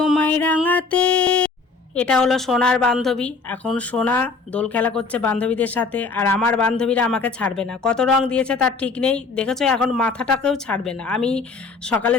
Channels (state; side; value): quieter; right; 4.3 dB